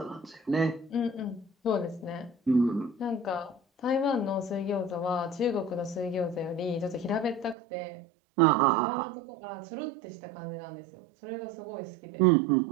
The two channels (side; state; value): left; drops out; at 7.6 s